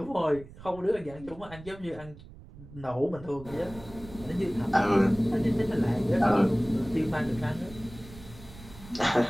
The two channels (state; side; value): noise; right; rumble, 18 dB below the sound